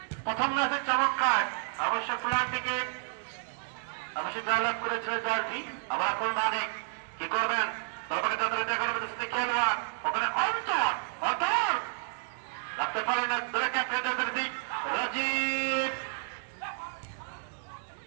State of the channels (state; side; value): silent; left; 57 dB below the other